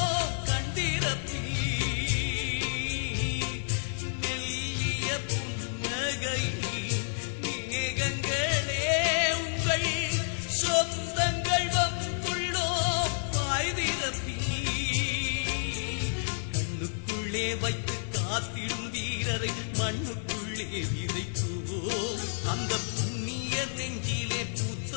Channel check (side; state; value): right; silent; digital silence